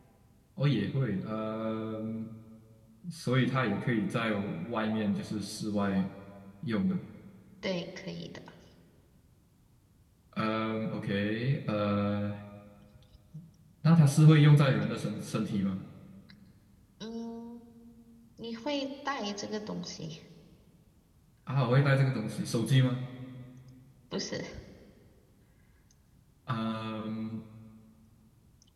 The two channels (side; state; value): both; identical; correlation 1.00